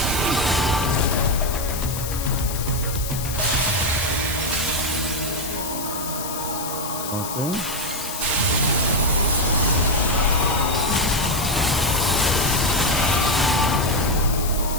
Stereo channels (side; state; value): left; noise; hiss, 7 dB below the sound